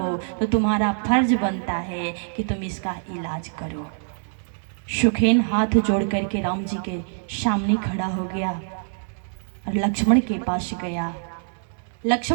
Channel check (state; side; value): silent; left; digital silence